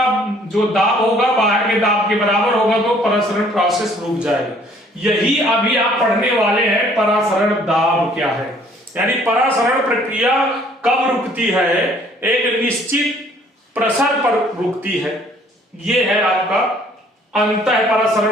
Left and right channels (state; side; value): normal; both; correlation 0.59